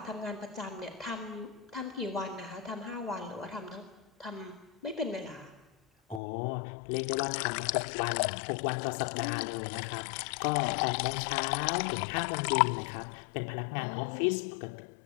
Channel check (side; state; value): right; drops out; at 6.2 s